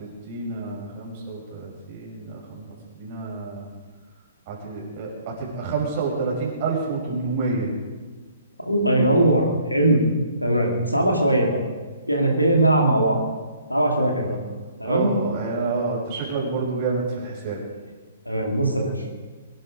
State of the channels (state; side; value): inverted; both; correlation -0.61